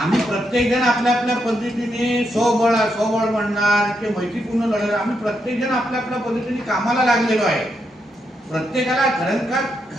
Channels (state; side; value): normal; both; correlation 0.81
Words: प्रत्येक जण आपल्या आपल्या पद्धतीने स्वबळ म्हणणार की मैत्रीपूर्ण लढणार, आम्ही प्रत्येक जण आपल्या आपल्या पद्धतीने कामाला लागलेलो आहे. प्रत्येकाला